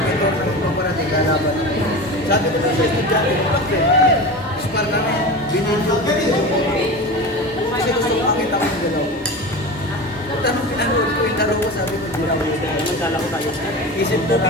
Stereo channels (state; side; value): normal; both; correlation 0.29